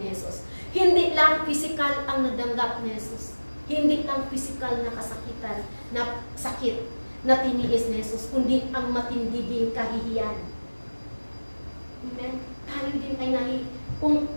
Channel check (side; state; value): both; inverted; correlation -1.00